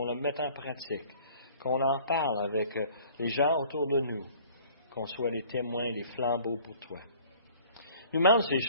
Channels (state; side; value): inverted; both; correlation -0.52